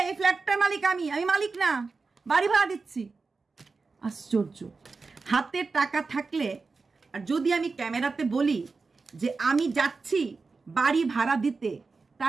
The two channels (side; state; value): left; quieter; 4.3 dB